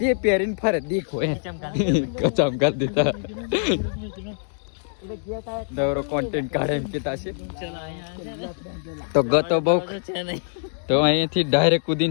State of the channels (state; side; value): silent; right; digital silence